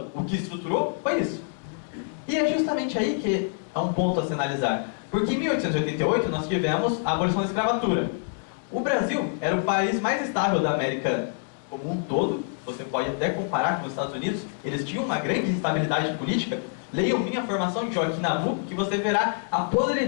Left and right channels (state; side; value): silent; right; 61 dB below the other